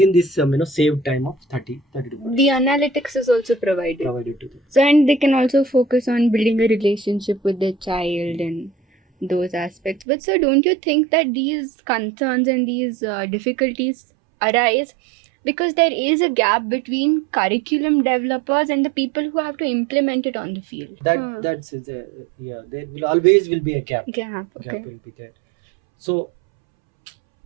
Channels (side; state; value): left; drops out; at 10.1 s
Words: this saved time of 30 to 40. The analytics is also provided to them. So, and they can also focus on building a relationship with their child and those aspects. But sir, don't you think that these concerns and these difficulties arise because there is a gap between curriculum developers and the people who have to implement it on the field? That's there will always be a gap. Gap Will be there. So